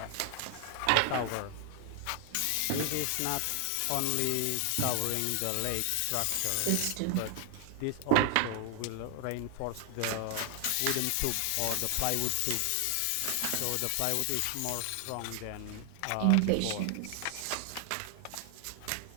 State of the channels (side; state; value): both; different; correlation 0.00